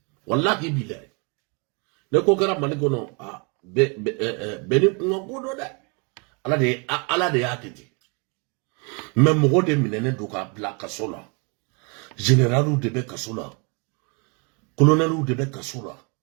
Wallahi bilay. Ne kokara manigono a beni ngogodo da. Ala de yakiti. Mais mogo de minene doka bla kasola. Général de be kasola. Colonel de be kasola.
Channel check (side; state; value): left; quieter; 33.6 dB